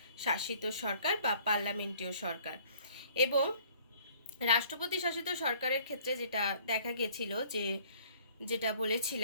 শাসিত সরকার বা পার্লামেন্টীয় সরকার। এবং রাষ্ট্রপতি শাসিত সরকারের ক্ষেত্রে যেটা দেখা গেছিল, যেটা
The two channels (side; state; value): both; inverted; correlation -0.56